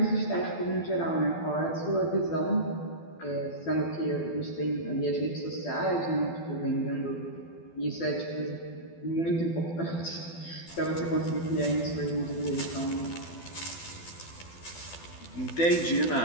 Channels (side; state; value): right; late; 12 ms